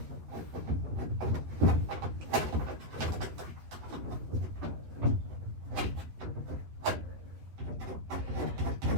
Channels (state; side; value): late; left; 12 ms